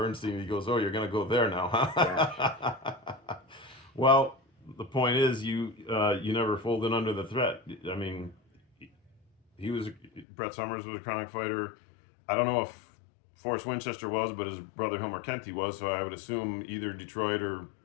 He goes, "Oh, you're going to go there now, Yes. huh?" Well, the point is, you never folded under the threat. I mean, he was Bret Summers was a Kronk fighter. I don't know if Forrest Winchester was, but his brother Hilmer Kenty was. So I would assume either Detroit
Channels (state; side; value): drops out; right; at 10.2 s